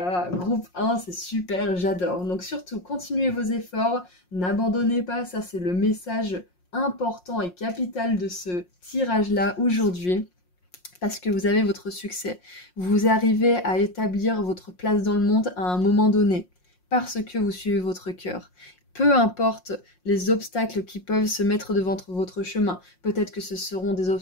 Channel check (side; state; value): right; late; 5.6 ms